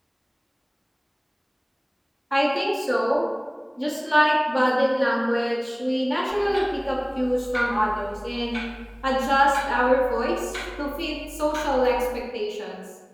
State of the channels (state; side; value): identical; both; correlation 1.00